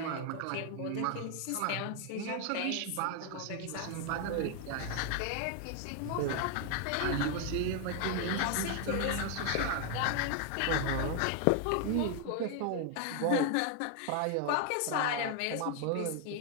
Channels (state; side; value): different; both; correlation 0.00